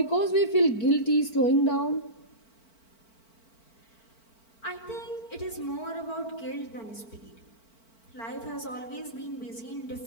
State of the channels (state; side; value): late; right; 4.5 ms